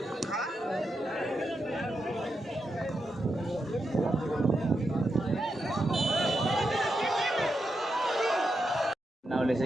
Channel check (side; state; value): both; normal; correlation 0.85